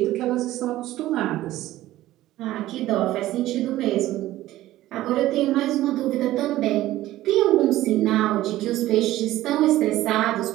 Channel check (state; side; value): quieter; left; 15.3 dB